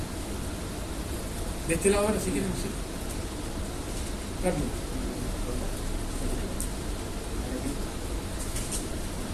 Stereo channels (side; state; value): both; identical; correlation 1.00